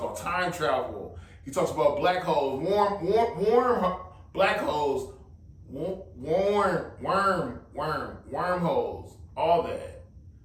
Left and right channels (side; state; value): both; identical; correlation 1.00